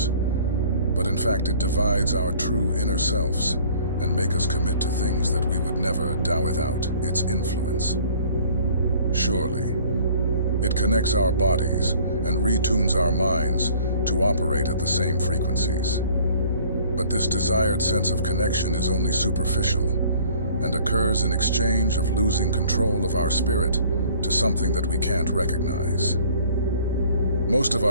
But in fact, it divides our true inner selves and make us commit to things that we would never do without its influence. Surely, it connects our bodies and retunes our minds to operate at the same frequencies. But this desired sense of connection is only superficial and occurs in exchange of losing control of our spirit to something that we can't recognize. Most of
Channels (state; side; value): inverted; both; correlation -0.53